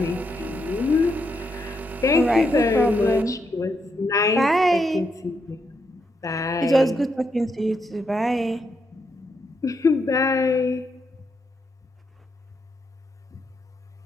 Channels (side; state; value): both; normal; correlation 0.80